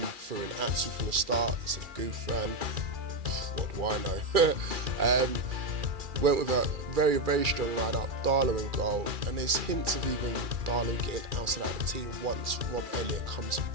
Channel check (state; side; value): late; left; 2.4 ms